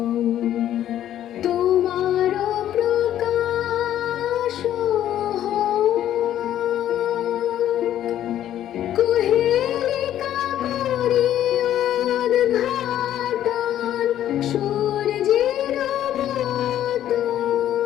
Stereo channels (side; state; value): right; quieter; 11.6 dB